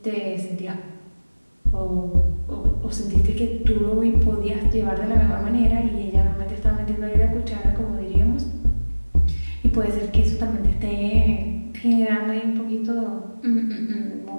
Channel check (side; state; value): both; inverted; correlation -1.00